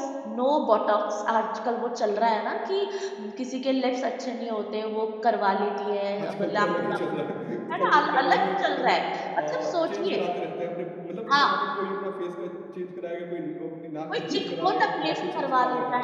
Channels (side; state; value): both; identical; correlation 1.00